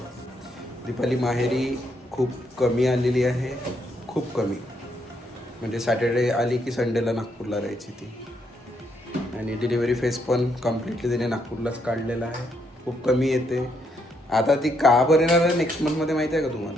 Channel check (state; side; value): normal; both; correlation 0.75